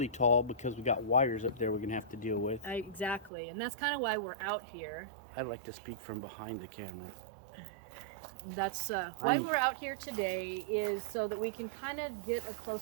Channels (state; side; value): drops out; left; at 3.3 s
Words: tall because we got wires up there we're gonna have to deal with. Exactly, and that's kind of why we're out here. I'd like to speak from behind the camera. That's why we're out here today, is so that we can kind of get a